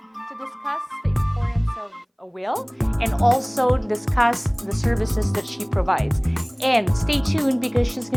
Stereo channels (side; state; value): both; identical; correlation 1.00